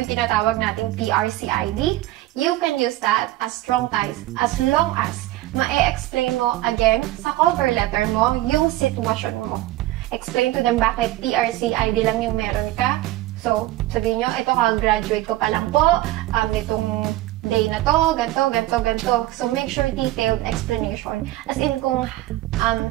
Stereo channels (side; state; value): left; quieter; 16.4 dB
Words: tinatawag nating PRC ID. You can use that as strong ties as long as ma-explain mo again sa cover letter mo yung sitwasyon mo. Explain to them bakit PRC ID lang yung meron ka. So, sabihin nyo, ito ka-graduate ko pa lang po, nitong day na to, ganto. So, make sure detailed explanation. As in kung